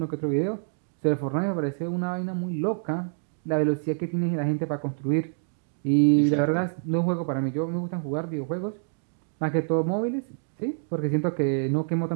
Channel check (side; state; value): left; silent; digital silence